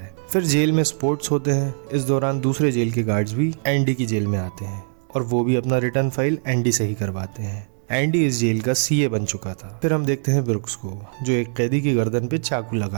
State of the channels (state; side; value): silent; left; 64 dB below the other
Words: फिर जेल में स्पोर्ट्स होते हैं। इस दौरान दूसरे जेल के गार्ड्स भी एंडी की जेल में आते हैं और वो भी अपना रिटर्न फाइल एंडी से ही करवाते हैं। एंडी इस जेल का सीए बन चुका था। फिर हम देखते हैं ब्रुक्स को जो एक कैदी की गर्दन पे चाकू